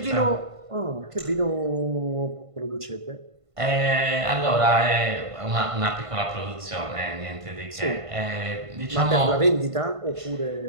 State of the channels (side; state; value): left; late; 1.5 ms